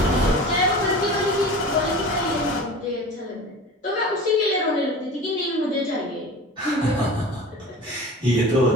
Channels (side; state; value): both; normal; correlation 0.36